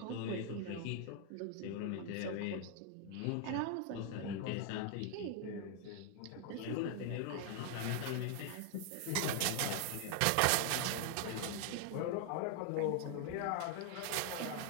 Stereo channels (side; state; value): both; different; correlation 0.00